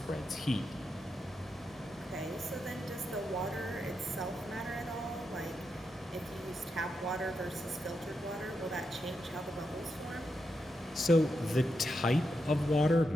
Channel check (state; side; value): normal; both; correlation 0.85